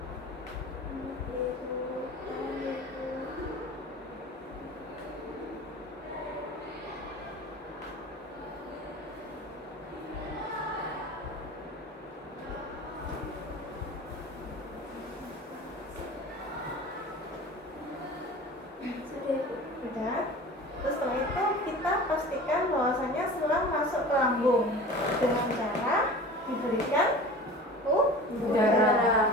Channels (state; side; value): normal; both; correlation 0.38